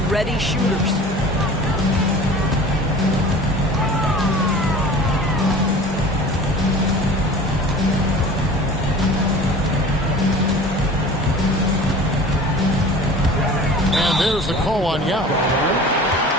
ready shooters. And there's the call on Yao.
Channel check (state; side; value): normal; both; correlation 0.41